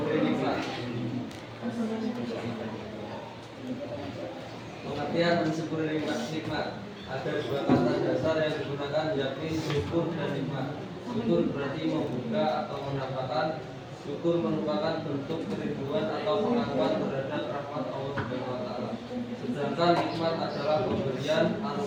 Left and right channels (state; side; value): identical; both; correlation 1.00